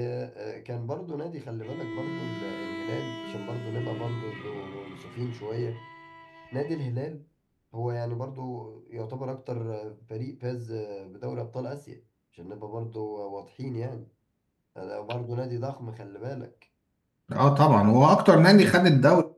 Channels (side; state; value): both; identical; correlation 1.00